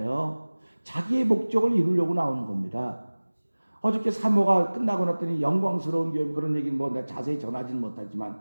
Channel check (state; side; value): inverted; both; correlation -1.00